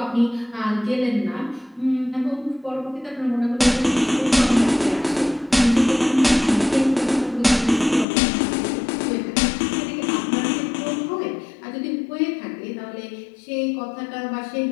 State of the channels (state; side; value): drops out; right; at 8.1 s